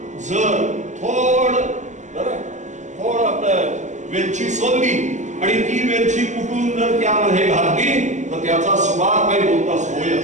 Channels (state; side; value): late; left; 0.34 ms